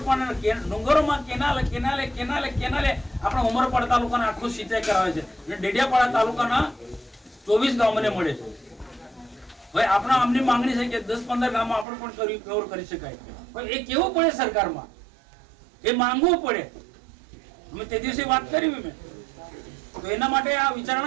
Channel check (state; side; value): drops out; left; at 11.9 s